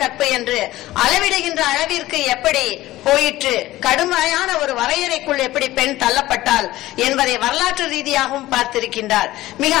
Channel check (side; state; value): right; quieter; 16.5 dB